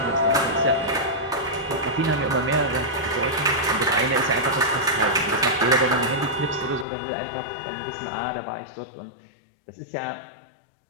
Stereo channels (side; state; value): right; drops out; at 6.9 s